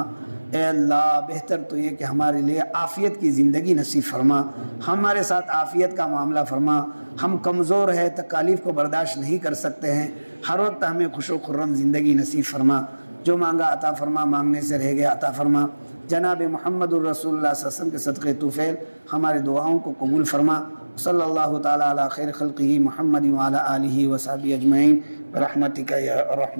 اے اللہ بہتر تو یہ کہ ہمارے لیے عافیت کی زندگی نصیب فرما، ہمارے ساتھ عافیت کا معاملہ فرما۔ ہم کمزور ہیں، تکالیف کو برداشت نہیں کر سکتے ہیں، ہر وقت ہمیں خوش و خرم زندگی نصیب فرما۔ جو مانگا عطا فرما، مانگنے سے رہ گیا عطا فرما۔ جناب محمد الرسول اللہ صلی اللہ علیہ وسلم کے صدقے طفیل ہمارے دعاؤں کو قبول فرما۔ صلی اللہ تعالیٰ علی خیر خلقہ محمد وعلی آلہ وصحبہ اجمعین برحمتک یا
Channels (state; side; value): inverted; both; correlation -1.00